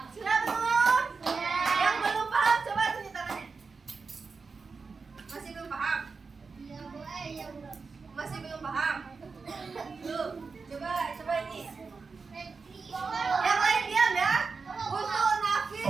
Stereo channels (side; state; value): left; quieter; 4.7 dB